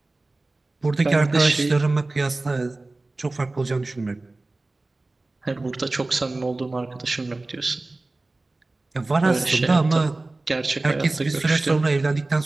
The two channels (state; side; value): quieter; left; 3.1 dB